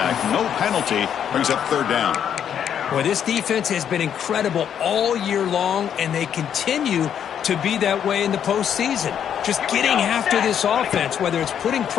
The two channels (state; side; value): quieter; right; 8.9 dB